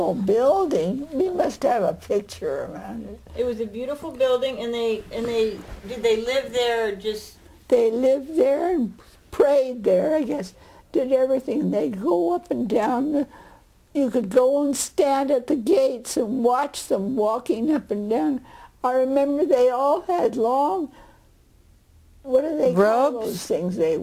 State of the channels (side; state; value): both; identical; correlation 1.00